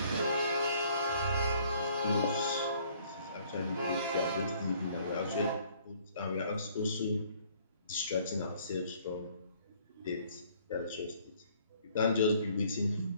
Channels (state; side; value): inverted; both; correlation -0.60